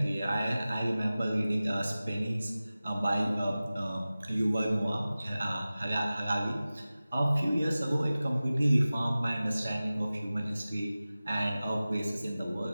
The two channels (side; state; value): both; inverted; correlation -0.97